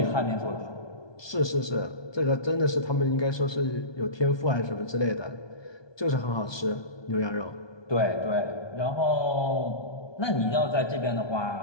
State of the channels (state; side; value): late; right; 1.2 ms